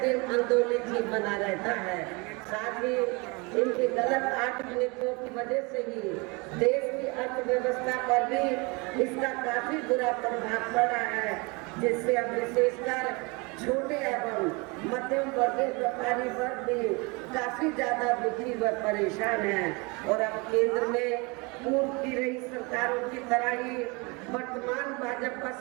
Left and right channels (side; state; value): left; quieter; 28.4 dB